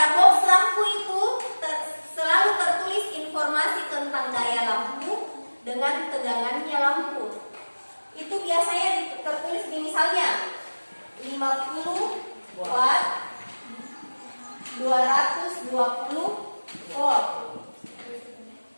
50 watt 220 volt.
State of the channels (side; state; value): both; inverted; correlation -1.00